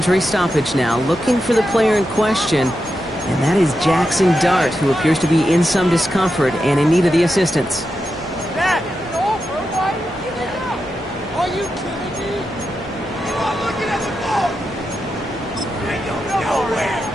stoppage now. Looking for the player in question, and that is Jackson Dart, who appears to be in some discomfort and in need of the assistance.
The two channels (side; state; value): both; normal; correlation 0.88